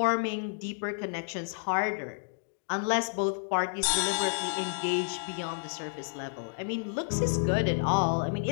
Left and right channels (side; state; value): right; silent; digital silence